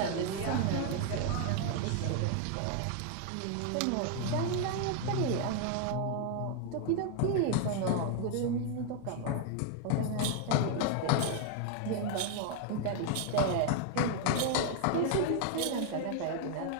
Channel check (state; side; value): different; both; correlation 0.00